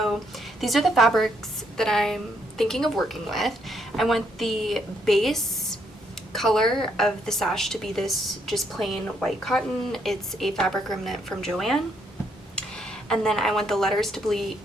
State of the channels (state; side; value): normal; both; correlation 0.73